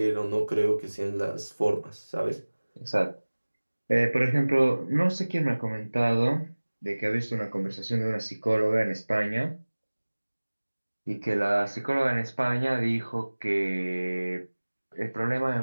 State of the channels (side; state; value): both; inverted; correlation -1.00